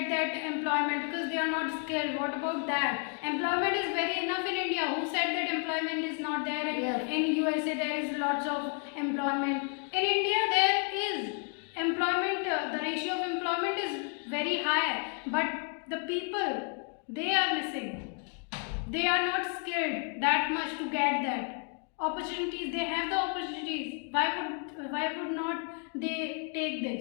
that employment because they are not skilled. What about that? Employment is very enough in India. Who said that employment is not there? Yes. In USA there is lots of employment. In India there is employment. The ratio of employment is very high, but the people, they are missing. They are not skilled that much to get that opportunities. They have the opportunities. Why would not they take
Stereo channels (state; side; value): quieter; right; 39.8 dB